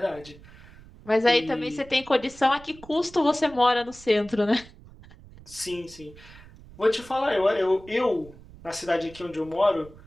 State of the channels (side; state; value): right; noise; rumble, 21 dB below the sound